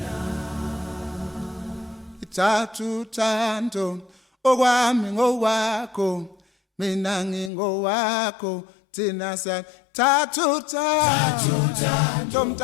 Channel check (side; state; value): right; drops out; at 7.5 s